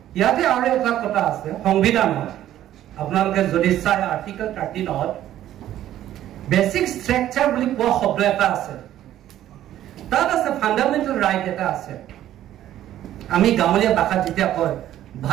ইয়াতে আৰু এটা কথা আছে সংবিধানত আপোনালোকে যদি চাই আৰ্টিকেল 13 বেসিক স্ট্ৰাকচাৰ বুলি কোৱা শব্দ এটা আছে তাত আছে ফান্ডামেন্টাল ৰাইট এটা আছে আমি গাঁৱলীয়া ভাষাত যেতিয়া কয়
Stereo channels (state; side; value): quieter; left; 12.5 dB